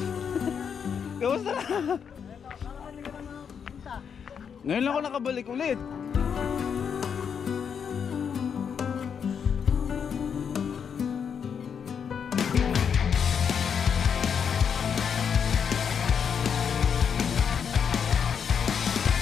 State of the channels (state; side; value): quieter; right; 7.1 dB